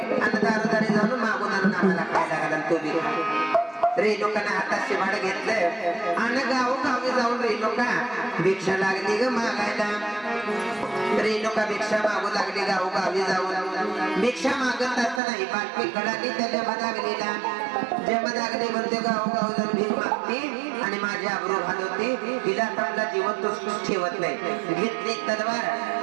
आणि दारोदारी जाऊन मागून आणून आम्हाला खायला घाला तो बी रेणुकानं हातात शिवाड घेतलं आणि गावोगावी जाऊन रेणुका भिक्षा लागली ग मागायला रेणुका भिक्षा मागू लागली गावोगावी जाऊन भिक्षा मागत असताना ही बातमी कळाली त्या जमदागणीला जमदागणी म्हणते गावोगाव जाऊन भीक मागते आणि माझी आबरू घालवते तिला आपला जीवन तो ठेवत नाही घेतली तलवार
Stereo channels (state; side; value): drops out; left; at 15.2 s